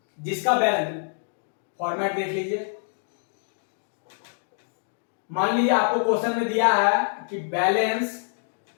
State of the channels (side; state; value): right; silent; digital silence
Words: जिसका बैलेंस, फॉर्मेट देख लीजिए। मान लीजिए आपको क्वेश्चन में दिया है कि balance